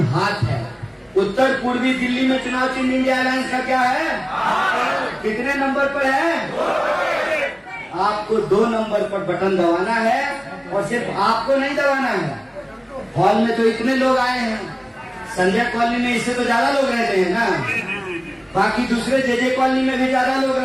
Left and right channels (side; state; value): both; identical; correlation 1.00